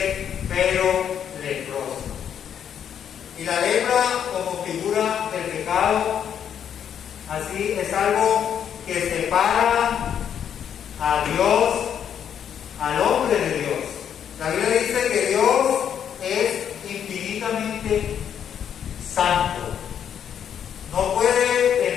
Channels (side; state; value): right; quieter; 8.8 dB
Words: pero leproso. Y la lepra como figura del pecado, así es algo que separa a Dios, al hombre de Dios. La Biblia dice que Dios es infinitamente santo. No puede